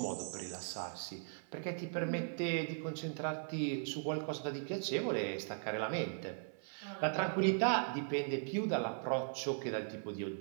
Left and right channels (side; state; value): left; silent; 52 dB below the other